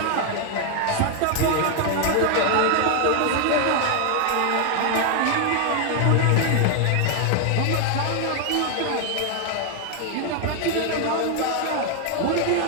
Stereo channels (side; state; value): both; different; correlation 0.00